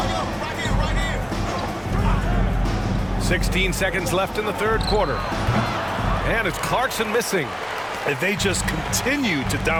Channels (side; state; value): both; identical; correlation 1.00